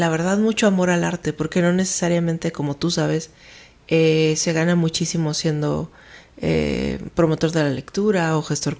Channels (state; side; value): identical; both; correlation 1.00